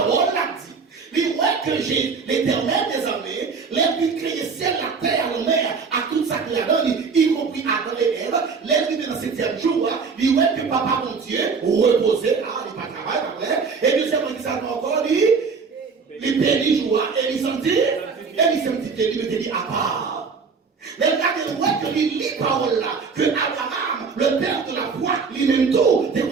là dit. Il voit que j'ai l'Éternel des armées, les créé ciel, la terre, la mer, à tout ça qu'il a donné, y compris Adam et Ève, les dans le 7e jour, il voit que papa mon Dieu reposait, là, il pas travail après, et puis c'est qui ça encore, il bénit joie, et il sentit qu'il mettait à part. Les gars, ils voient que il lit parole là, que Abraham, le père de la foi, lui-même tout, dès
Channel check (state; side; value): quieter; left; 5.2 dB